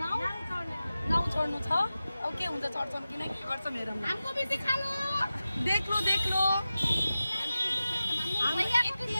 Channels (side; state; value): both; inverted; correlation -0.94